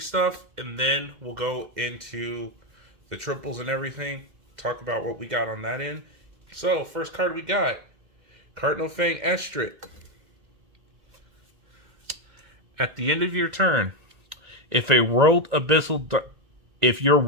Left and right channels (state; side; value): late; left; 2.0 ms